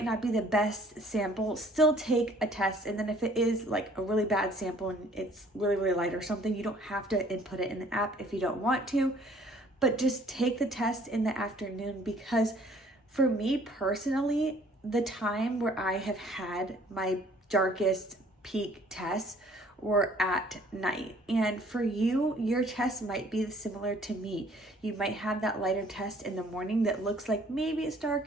not be the best sample, still take a test. And then if it is a really bad sample and it's really, really light or something, you don't have to input it in the app if you don't want to, but just take the test in the afternoon. Because for me personally, the time where I have had my darkest peak tests were at night. And for you, your test might be similar to me. You might have that lighter test in the morning that looks like maybe it's dark,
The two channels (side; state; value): both; normal; correlation 0.57